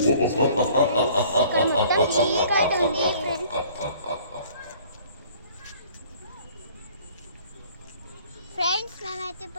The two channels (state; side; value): inverted; both; correlation -0.54